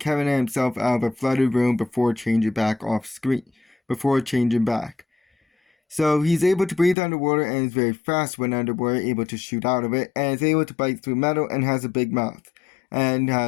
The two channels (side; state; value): right; drops out; at 7.0 s